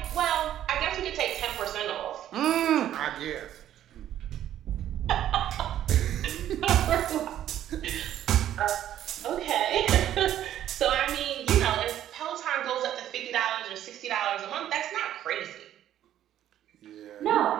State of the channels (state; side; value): quieter; left; 11.6 dB